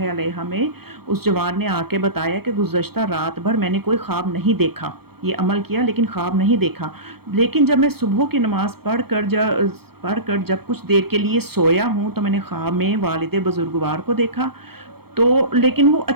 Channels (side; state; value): left; late; 0.96 ms